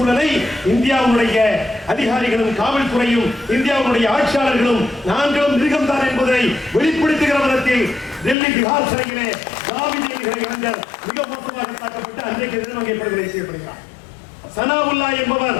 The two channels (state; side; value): drops out; right; at 8.3 s